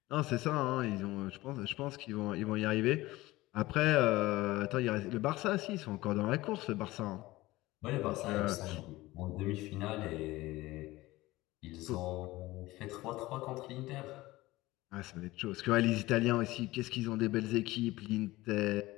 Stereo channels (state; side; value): quieter; right; 18.8 dB